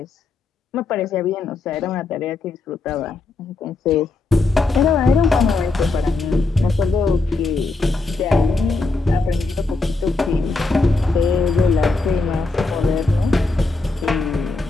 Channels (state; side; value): quieter; right; 3.5 dB